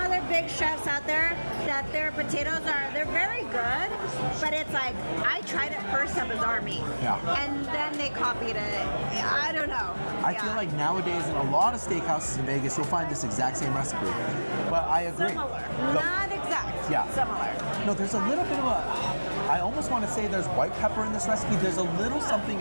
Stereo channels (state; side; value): inverted; both; correlation -1.00